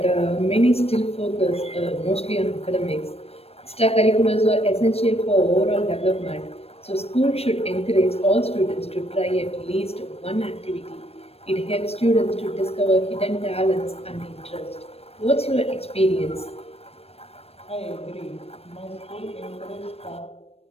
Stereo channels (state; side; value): late; right; 0.29 ms